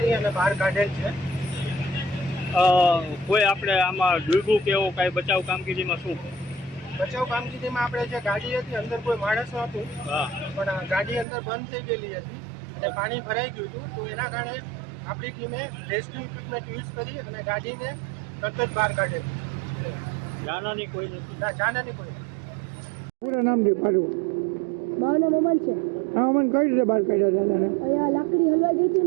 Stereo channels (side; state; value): left; drops out; at 11.2 s